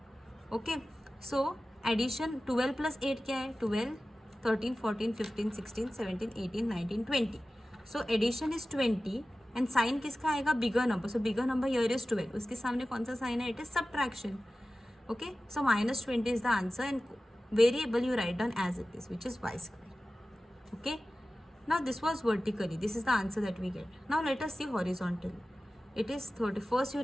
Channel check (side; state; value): both; normal; correlation 0.96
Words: Okay, so addition 12 plus 8 क्या है? 12, 13, 14, 15, 16, 17, 18, 19, 20. So addition is 20 and sign किसका आएगा? Bigger number. So bigger number here is 12. उसके सामने कौन सा sign है? It is subtraction. Okay, so minus 20 is the answer and variable you write down as it is which is y square. Okay, now this was vertically. This is the answer that we get. Now let us see horizontally. It is 30. First you